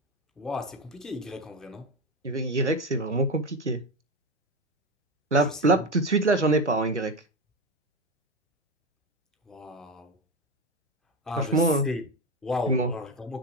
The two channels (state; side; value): normal; both; correlation 0.18